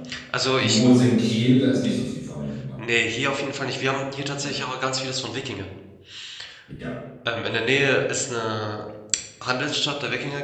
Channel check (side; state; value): both; identical; correlation 1.00